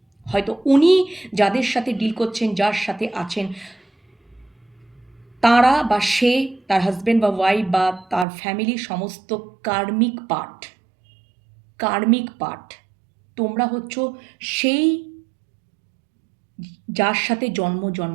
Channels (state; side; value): drops out; left; at 8.2 s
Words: হয়তো উনি যাদের সাথে ডিল করছেন, যার সাথে আছেন, তারা বা সে, তার হাজব্যান্ড বা ওয়াইফ বা তার ফ্যামিলি সমস্ত কার্মিক পার্ট। তোমরা হচ্ছ সেই যার সাথে